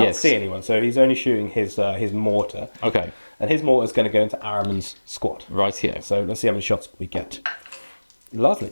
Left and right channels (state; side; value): inverted; both; correlation -1.00